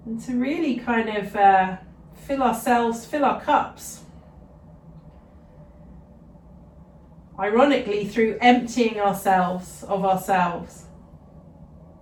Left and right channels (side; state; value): both; identical; correlation 1.00